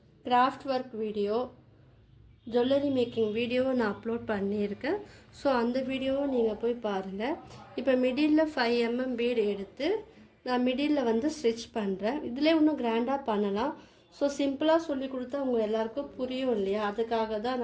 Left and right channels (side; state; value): both; identical; correlation 1.00